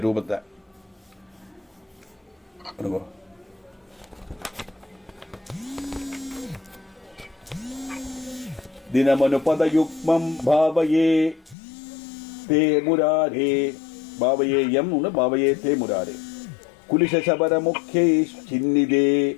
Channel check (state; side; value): drops out; right; at 11.6 s